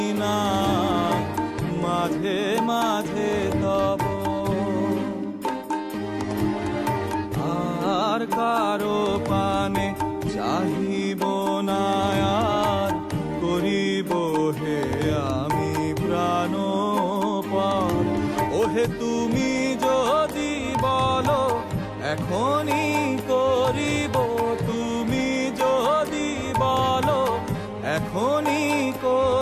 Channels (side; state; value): both; identical; correlation 1.00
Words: না মাঝে মাঝে তব আর কারো পানে চাহিব না আর করিব হে আমি প্রাণপণ ওহে তুমি যদি বলো এখনই করিব তুমি যদি বলো এখনই